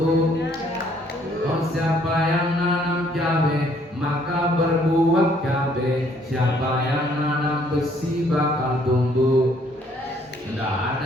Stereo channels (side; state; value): both; normal; correlation 0.64